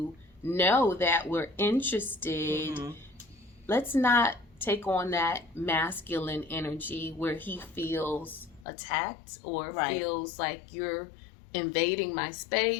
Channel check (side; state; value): right; drops out; at 8.7 s